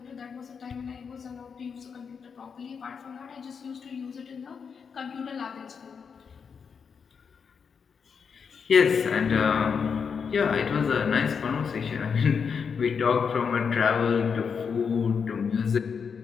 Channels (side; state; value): right; quieter; 6.2 dB